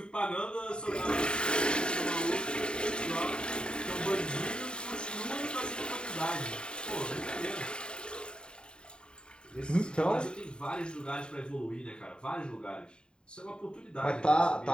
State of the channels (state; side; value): late; right; 0.049 ms